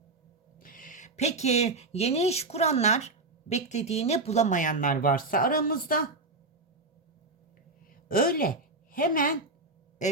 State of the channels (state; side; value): quieter; left; 3.3 dB